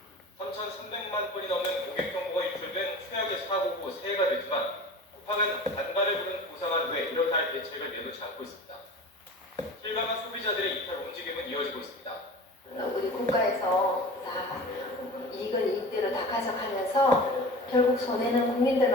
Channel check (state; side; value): normal; both; correlation 0.37